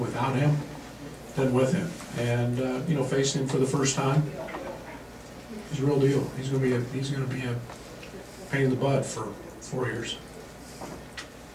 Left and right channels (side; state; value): both; identical; correlation 1.00